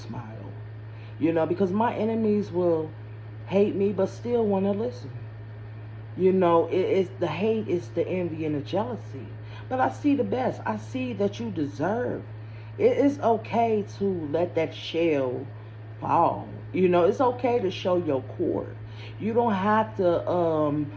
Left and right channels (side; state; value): both; identical; correlation 1.00